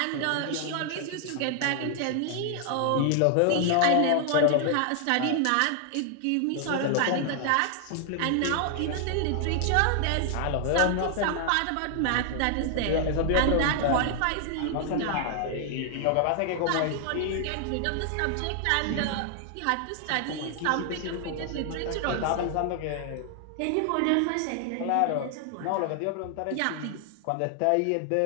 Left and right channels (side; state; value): both; different; correlation 0.00